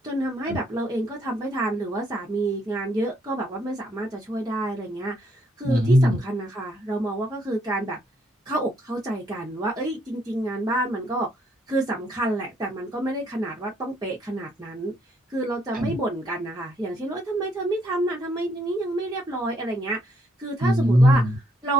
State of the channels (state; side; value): normal; both; correlation 0.72